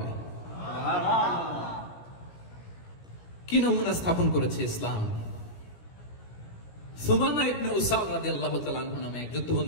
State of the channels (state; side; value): late; right; 17 ms